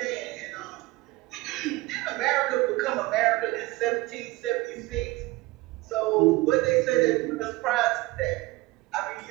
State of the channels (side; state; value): left; quieter; 20.3 dB